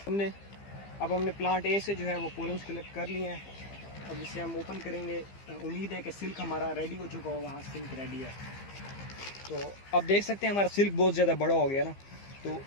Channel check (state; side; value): late; right; 15 ms